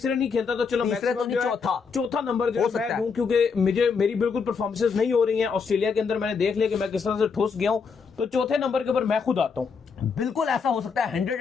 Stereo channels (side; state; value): right; quieter; 5.5 dB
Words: नहीं खेलता तो चलो चौथा नंबर जो है मैं दूं, क्योंकि मेरी बिल्कुल परफॉर्मेंसेस नहीं हो रही हैं। ऑस्ट्रेलिया के अंदर मैंने देख लिया कि मैं किस तरह से ठुस गया हूं, तो चौथे नंबर के ऊपर मैं खुद आता हूं। बिल्कुल ऐसा हो सकता है,